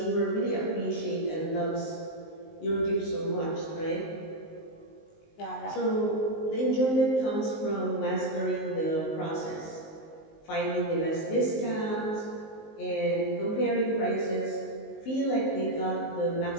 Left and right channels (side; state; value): right; late; 19 ms